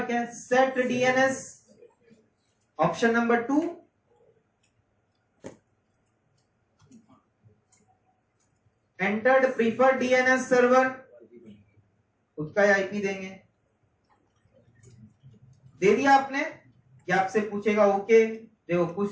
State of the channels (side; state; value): both; identical; correlation 1.00